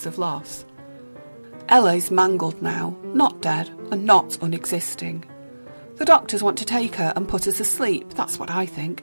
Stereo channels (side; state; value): both; inverted; correlation -1.00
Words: of loss. Ella is mangled now, not dead and not unexisting. The doctors want to take her and put her to sleep, that's what I